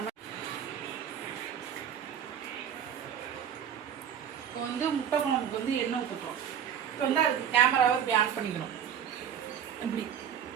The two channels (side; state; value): left; quieter; 8.8 dB